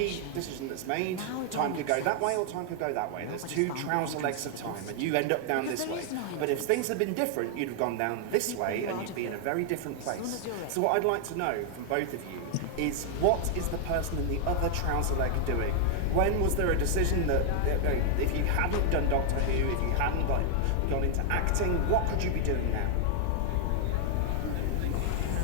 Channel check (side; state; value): both; different; correlation 0.00